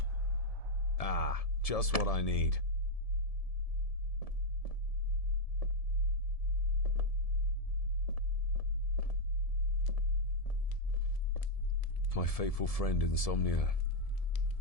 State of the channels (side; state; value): right; late; 1.7 ms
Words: Ah, just what I need. My faithful friend Insomnia.